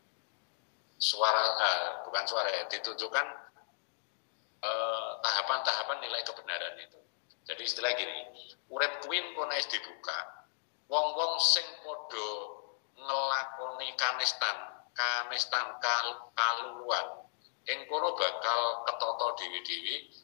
ditunjukkan tahapan-tahapan nilai kebenaran itu. Jadi istilah gini, urip kuwi kono wis dibuka, wong-wong sing padha ngelakoni kanistan kaluluan, ing kono bakal ketata dewi-dewi,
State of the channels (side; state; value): right; silent; digital silence